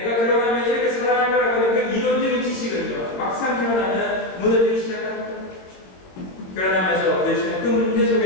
결혼하면 이렇게 사랑할 거라고 하는 그 이론적인 지식은요, 막상 결혼하면 무너지기 시작합니다. 결혼하면서 부딪히는 그 문제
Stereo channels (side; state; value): right; late; 22 ms